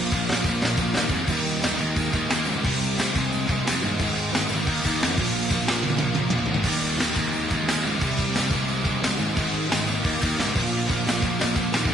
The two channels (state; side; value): normal; both; correlation 0.73